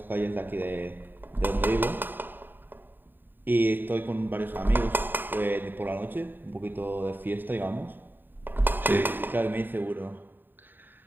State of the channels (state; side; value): late; left; 0.093 ms